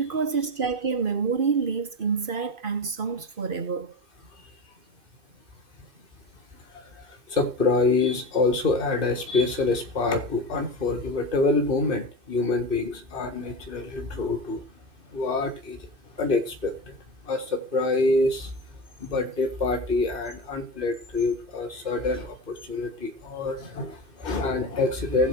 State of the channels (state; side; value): late; left; 2.5 ms